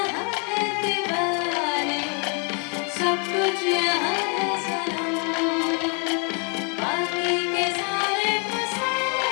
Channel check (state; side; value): quieter; right; 37.2 dB